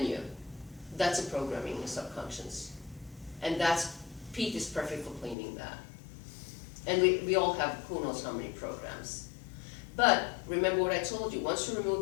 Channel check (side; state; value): right; drops out; at 5.4 s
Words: you. That's a programming in the subconscious. And that's, PEAT is perfect for cleaning that. And we all have who knows how many programs. But remember what I told you, once you